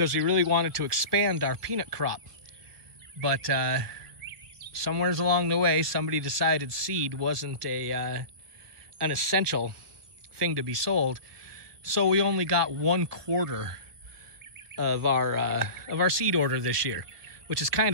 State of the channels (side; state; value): left; late; 1.9 ms